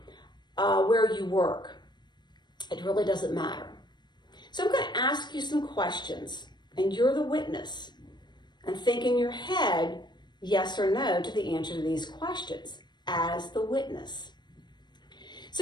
where you work. It really doesn't matter. So I'm going to ask you some questions, and you're the witness. And think in your head, yes or no, to the answer to these questions as the witness.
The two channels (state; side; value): late; right; 0.21 ms